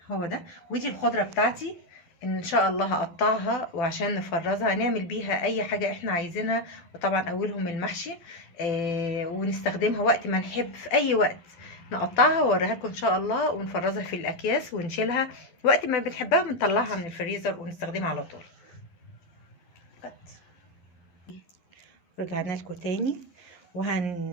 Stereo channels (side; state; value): right; late; 12 ms